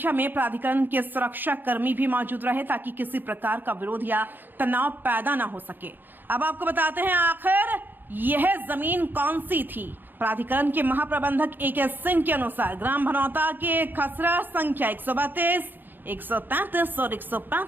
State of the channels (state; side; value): late; left; 0.092 ms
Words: में प्राधिकरण के सुरक्षा कर्मी भी मौजूद रहे ताकि किसी प्रकार का विरोध या तनाव पैदा न हो सके। अब आपको बताते हैं आखिर यह जमीन कौन सी थी। प्राधिकरण के महाप्रबंधक AK सिंह के अनुसार ग्राम भनौता के खसरा संख्या 132, 133 और